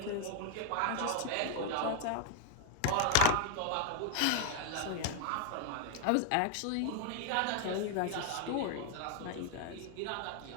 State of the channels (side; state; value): both; different; correlation 0.00